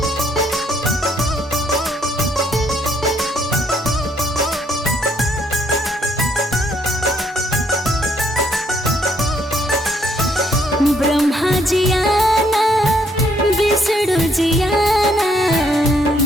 ब्रह्मा जी आना विष्णु जी आना,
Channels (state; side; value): normal; both; correlation 0.69